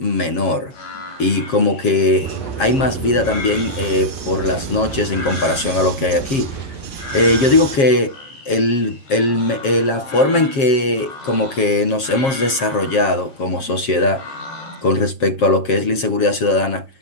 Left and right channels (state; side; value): late; right; 7.4 ms